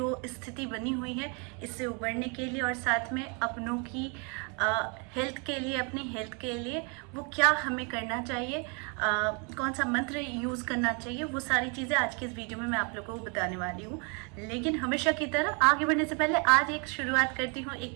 स्थिति बनी हुई है इससे उबरने के लिए और साथ में अपनों की हेल्थ के लिए, अपनी हेल्थ के लिए वो क्या हमें करना चाहिए, कौन सा मंत्र यूज़ करना चाहिए, वो सारी चीज़ें आज की इस वीडियो में मैं आप लोगों को बताने वाली हूँ। लेकिन हमेशा की तरह आगे बढ़ने से पहले आज एक शुरुआत करती हूँ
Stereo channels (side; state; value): left; quieter; 34.9 dB